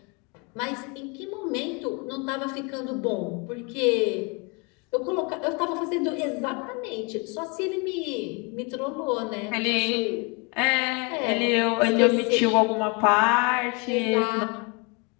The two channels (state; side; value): quieter; right; 31.1 dB